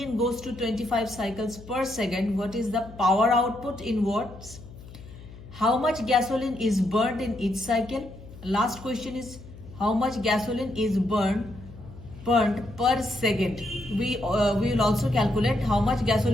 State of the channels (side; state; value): left; noise; hum, 17 dB below the sound